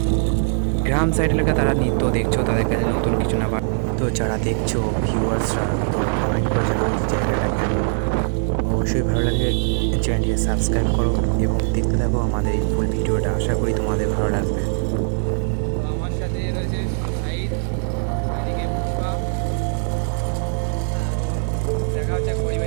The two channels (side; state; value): left; silent; digital silence